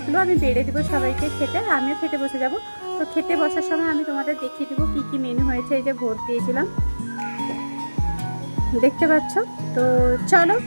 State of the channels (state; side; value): inverted; both; correlation -1.00